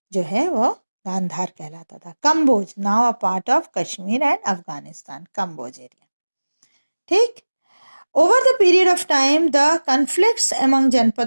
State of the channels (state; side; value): inverted; both; correlation -1.00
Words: जो है वो गांधार कहलाता था। Kamboja, now a part of Kashmir and Afghanistan, Kamboja area. ठीक। Over the period of time, the conflicts among